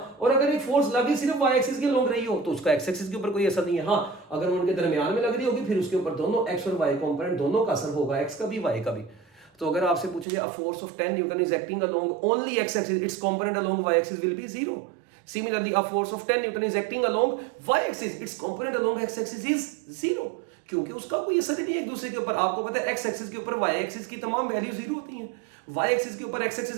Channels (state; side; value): drops out; left; at 10.2 s